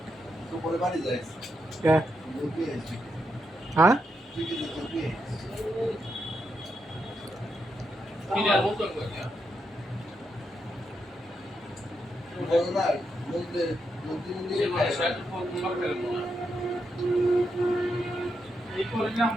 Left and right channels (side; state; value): both; normal; correlation 0.83